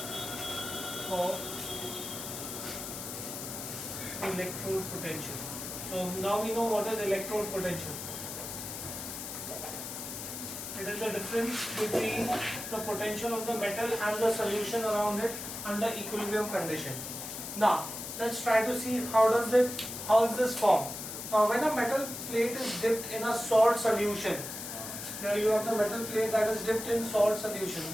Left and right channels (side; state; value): left; noise; hiss, 7 dB below the sound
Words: of electrode potential. So now we know what is electrode potential. It is the difference between the potential of the metal and the solution around it under equilibrium condition. Now let's try to see how is this formed. Now when a metal plate is dipped in a salt solution, here you have the metal plate that is dipped in salt solution.